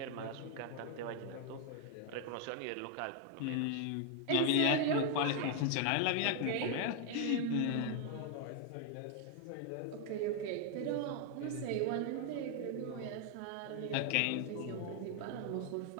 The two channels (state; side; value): different; both; correlation 0.00